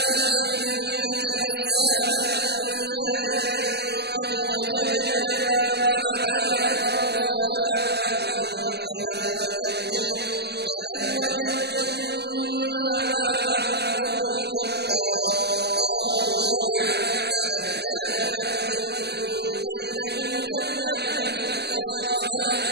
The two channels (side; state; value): left; late; 0.49 ms